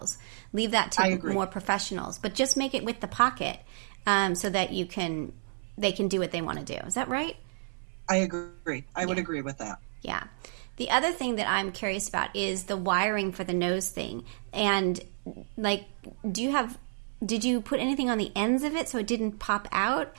Leave that to more professionals. But just make it with the pocket, so that they can do what they want to do. Is that right? I agree. I would agree with that. Yeah. The other thing that I'm curious about is the wiring for the nose thing. And did you put anything on the ends of it so it didn't pop out?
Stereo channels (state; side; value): silent; left; 58 dB below the other